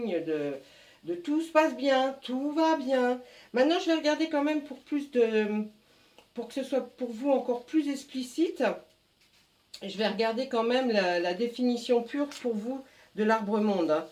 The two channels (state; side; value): identical; both; correlation 1.00